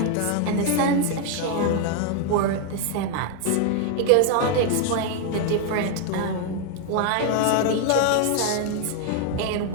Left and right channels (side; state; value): both; different; correlation 0.01